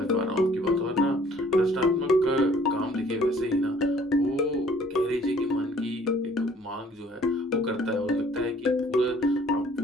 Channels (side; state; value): both; normal; correlation 0.57